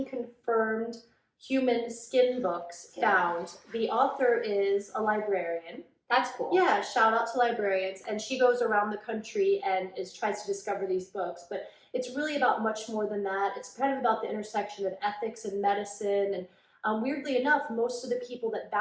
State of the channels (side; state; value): both; identical; correlation 1.00